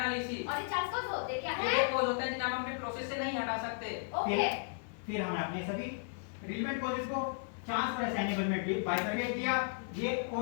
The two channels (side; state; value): right; silent; 55 dB below the other